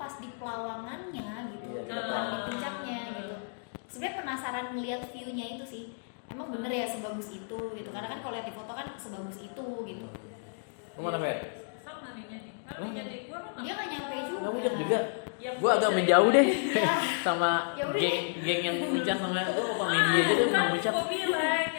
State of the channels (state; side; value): silent; right; digital silence